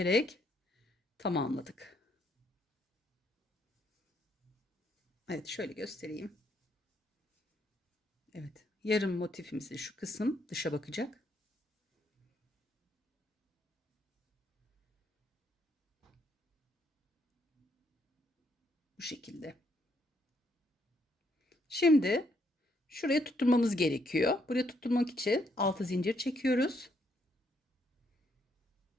tamamladık. Evet, şöyle göstereyim. Evet, yarım motifimizi şu kısım dışa bakacak. Bu şekilde. Şimdi şuraya tutturmamız gerekiyor. Buraya tutturmak için 6 zincir çekiyoruz.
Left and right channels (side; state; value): both; normal; correlation 0.73